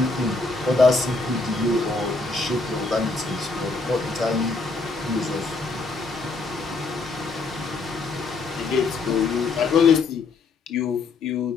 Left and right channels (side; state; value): right; quieter; 3.8 dB